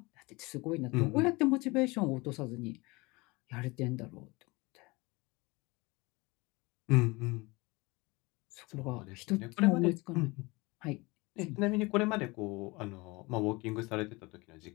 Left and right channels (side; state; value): right; quieter; 24.4 dB